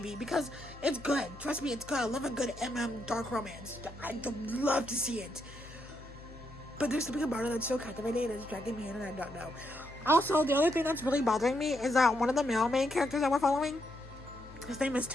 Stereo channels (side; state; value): left; noise; hum, 18 dB below the sound